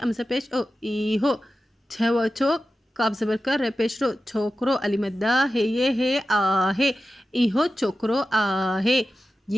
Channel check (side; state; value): both; normal; correlation 0.93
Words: पेश ओ इहो छो छो काब ज़बर कर रे पेश रो छोकरो अलिमद्दा है ये है आहे। इहो छोकरो आहे,